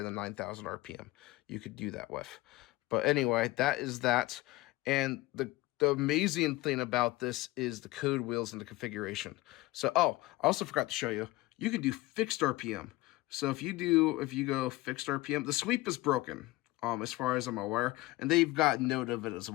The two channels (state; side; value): quieter; right; 19.3 dB